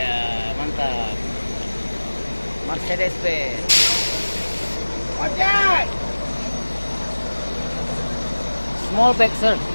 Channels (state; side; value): inverted; both; correlation -1.00